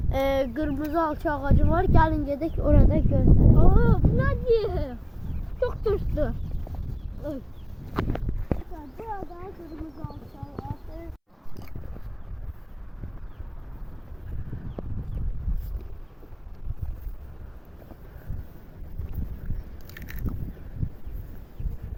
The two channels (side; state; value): both; identical; correlation 1.00